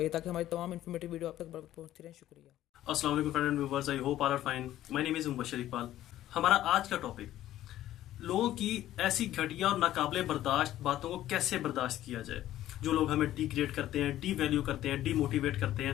ताकि हमारी तमाम इन्फॉर्मेटिव वीडियो आप तक पहुंचती रहे। शुक्रिया। अस्सलाम वालेकुम friend and viewers, I hope all are fine. My name is Mubashir Iqbal. हमारा आज का टॉपिक लोगों की ऐसी घटिया और नाकाबिले बर्दाश्त बातों को कैसे बर्दाश्त किया जाए। जो लोग हमें डिग्रेड करते हैं, डी वैल्यू करते हैं, डीमोटिवेट करते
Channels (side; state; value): right; quieter; 13.4 dB